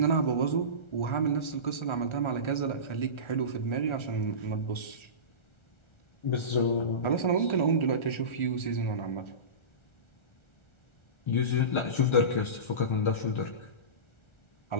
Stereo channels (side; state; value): right; late; 1.4 ms